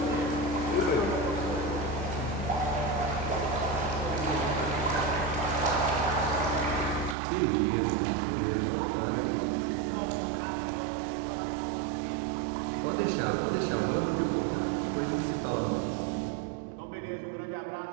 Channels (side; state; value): left; drops out; at 7.2 s